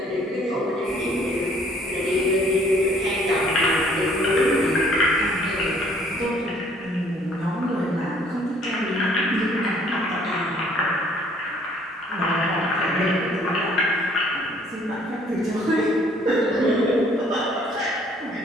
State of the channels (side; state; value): both; normal; correlation 0.60